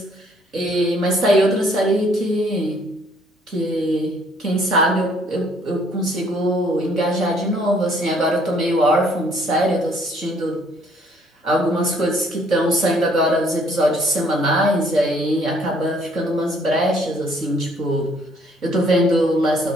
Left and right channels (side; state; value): both; normal; correlation 0.63